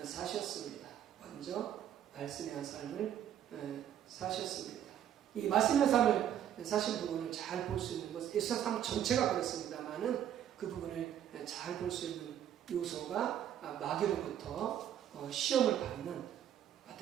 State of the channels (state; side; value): quieter; left; 10.4 dB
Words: 사셨습니다. 먼저 말씀에 관한 삶을 사셨습니다. 이 말씀에 관한 삶을 사신 부분을 잘 볼 수 있는 것, 예수님 삶 전체가 그렇습니다만은 그 부분을 잘 볼 수 있는 요소가 마귀로부터 시험을 받는